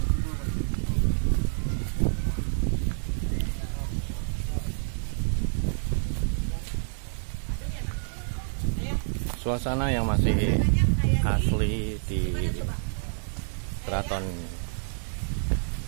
Suasana yang masih asli di keraton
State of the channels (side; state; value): left; silent; 59 dB below the other